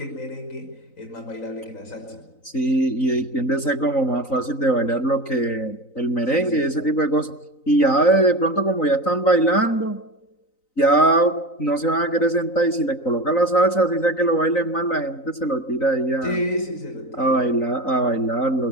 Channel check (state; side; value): late; right; 3.9 ms